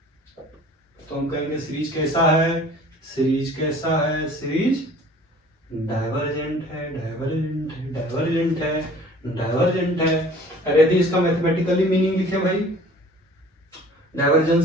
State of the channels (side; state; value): both; normal; correlation 0.49